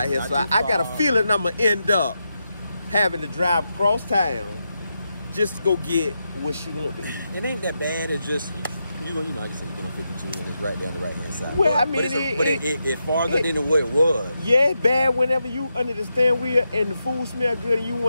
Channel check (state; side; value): inverted; both; correlation -0.86